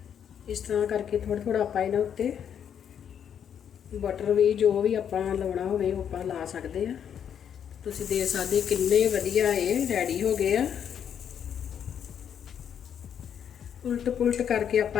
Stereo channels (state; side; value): quieter; right; 8.6 dB